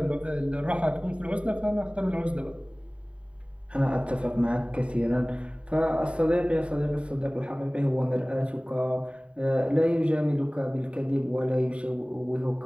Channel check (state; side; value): late; left; 0.060 ms